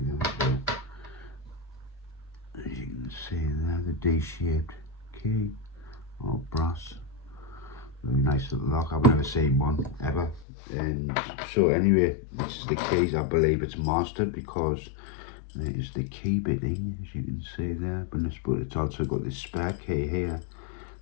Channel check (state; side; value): drops out; right; at 10.5 s